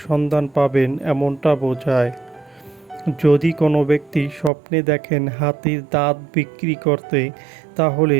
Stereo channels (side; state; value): left; drops out; at 4.5 s